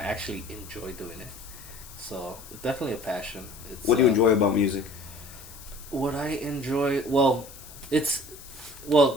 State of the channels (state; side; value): noise; left; hiss, 17 dB below the sound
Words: actually enjoy doing it. So, it's definitely a passion. What do you enjoy about music? What I enjoy...